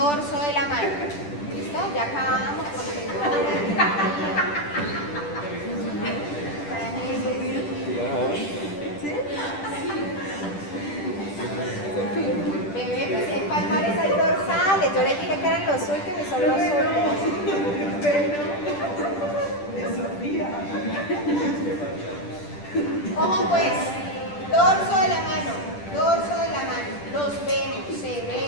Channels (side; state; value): right; late; 10 ms